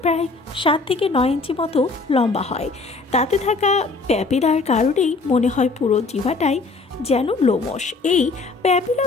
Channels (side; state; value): right; quieter; 3.8 dB